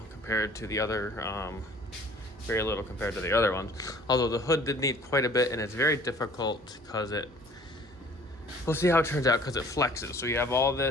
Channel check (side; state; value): both; normal; correlation 0.53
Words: to the other ones. Although the hood did need quite a bit, and it's very difficult because we'll see how it turns out because it flexes. So you have all